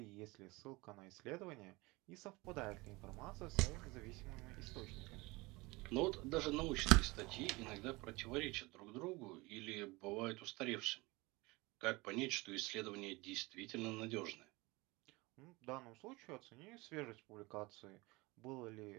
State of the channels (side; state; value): left; quieter; 23.5 dB